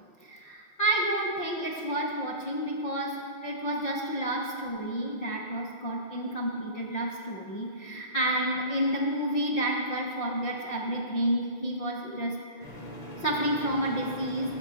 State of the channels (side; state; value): right; late; 5.7 ms